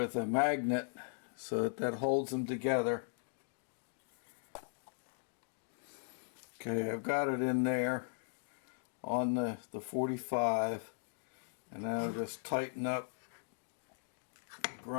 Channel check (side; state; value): right; silent; digital silence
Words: a magnet so that holds them together. Okay, I've got it in there on the 45, and now I'll just tighten up the